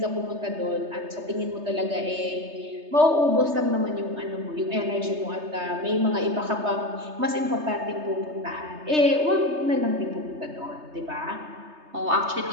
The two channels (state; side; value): late; left; 3.3 ms